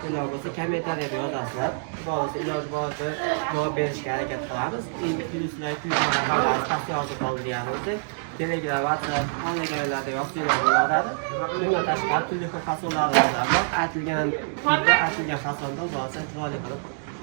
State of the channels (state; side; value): silent; left; digital silence